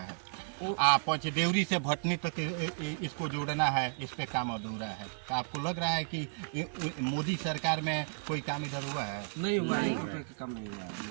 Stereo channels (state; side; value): silent; left; 55 dB below the other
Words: पंचदेवरी से भटनी तक इसको जोड़ना है, इस पे काम अधूरा है। तो आपको लग रहा है कि मोदी सरकार में कोई काम इधर हुआ है? नहीं हुआ, काम नहीं हुआ